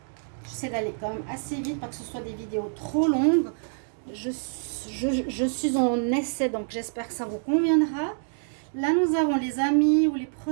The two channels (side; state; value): left; silent; digital silence